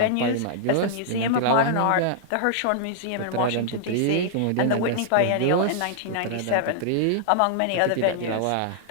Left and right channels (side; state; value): both; different; correlation -0.01